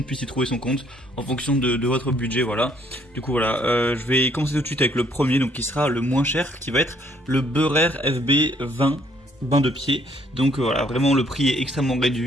puisse y trouver son compte en fonction de votre budget. Voilà. Du coup voilà, je vais commencer tout de suite avec le premier, donc qui sera le moins cher, qui va être le Beurer FB20 bain de pied. Donc voilà, vraiment le prix est extrêmement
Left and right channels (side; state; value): both; normal; correlation 0.66